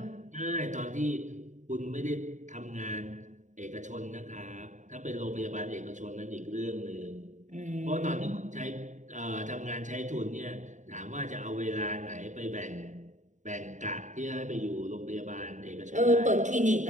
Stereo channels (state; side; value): late; left; 0.36 ms